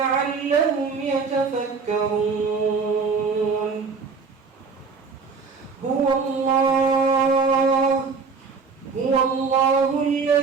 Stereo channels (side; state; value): left; quieter; 5.0 dB